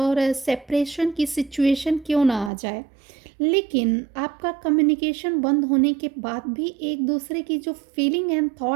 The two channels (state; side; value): drops out; left; at 2.5 s